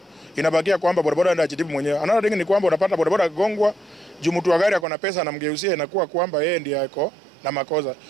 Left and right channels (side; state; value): left; drops out; at 4.9 s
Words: inabakia kwamba bodaboda anaenda ajitibu mwenyewe. Another thing ni kwamba unapata bodaboda akigongwa, juu mtu wa gari ako na pesa na mgeusia, inakuwa kwamba yeye ndiye ako na makosa.